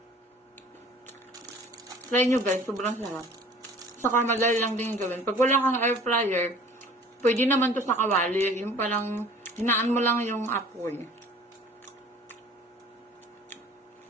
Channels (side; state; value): both; normal; correlation 0.48